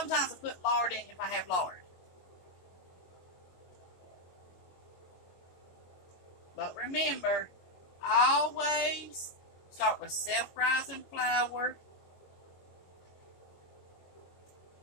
I put lard in if I have lard. But remember, always start with self-rising flour,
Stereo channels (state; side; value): late; right; 22 ms